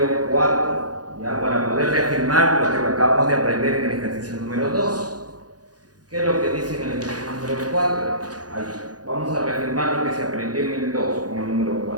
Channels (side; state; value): left; late; 0.68 ms